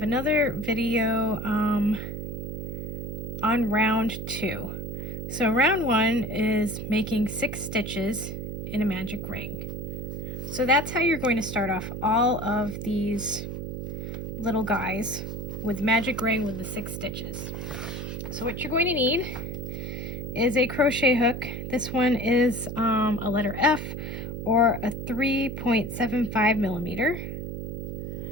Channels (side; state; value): right; noise; hum, 6 dB below the sound